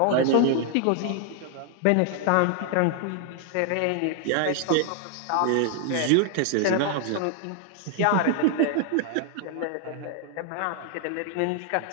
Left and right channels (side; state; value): both; different; correlation 0.00